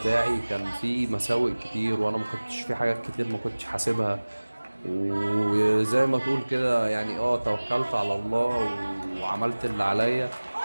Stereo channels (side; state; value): both; inverted; correlation -1.00